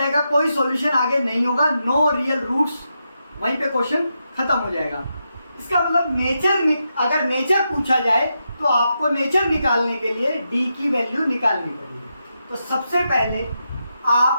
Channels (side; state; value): both; inverted; correlation -0.85